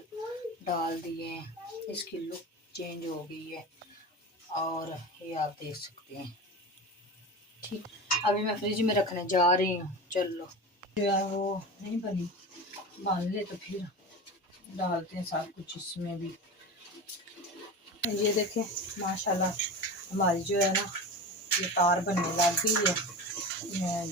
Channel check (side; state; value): both; normal; correlation 0.28